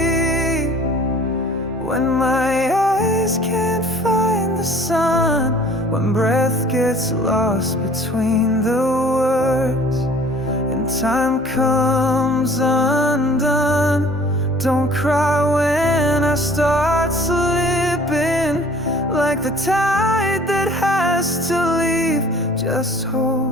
when my eyes can't find the sun, when breath gets lost between the words and time comes undone. Don't cry when I start slipping, like the tide that has to leave. Just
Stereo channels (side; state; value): both; normal; correlation 0.51